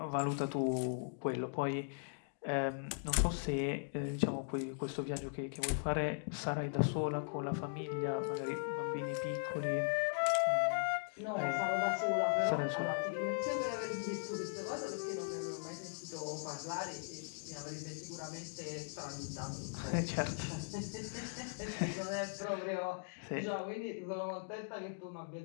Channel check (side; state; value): right; silent; digital silence